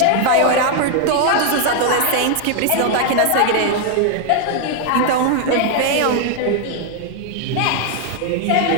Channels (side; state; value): both; different; correlation 0.00